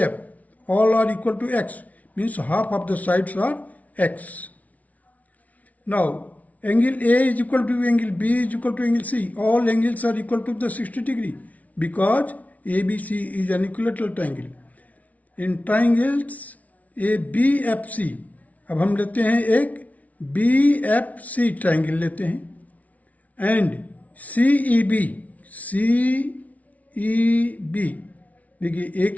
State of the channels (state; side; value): late; right; 0.070 ms